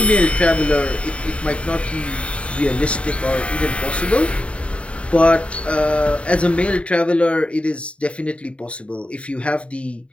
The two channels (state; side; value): late; right; 0.061 ms